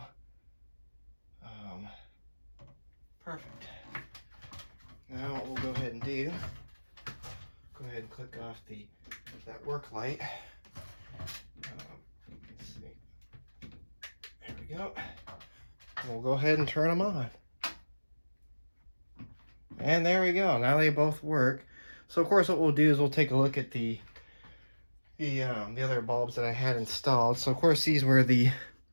Perfect. Now what we'll go ahead and do, go ahead and click off that work light. Let's see. There we go. And we'll go ahead and turn them on. And there we go. Now they both work. So of course what we'll do is we'll take a look at the other bulbs that I had installed. So of course these were the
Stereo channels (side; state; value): both; inverted; correlation -1.00